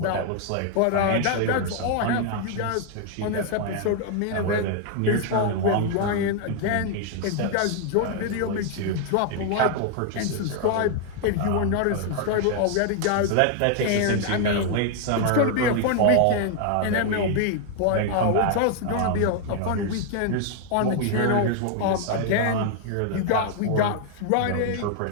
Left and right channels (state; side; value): different; both; correlation 0.00